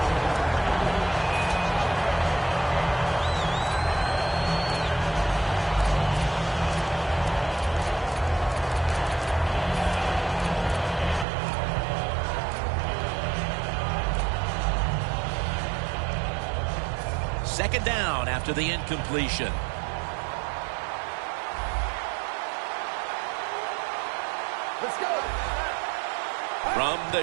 Second down after the incompletion. Let's go. From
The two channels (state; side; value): drops out; left; at 11.2 s